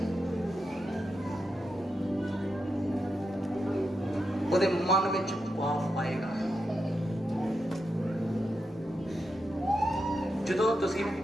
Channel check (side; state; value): both; normal; correlation 0.86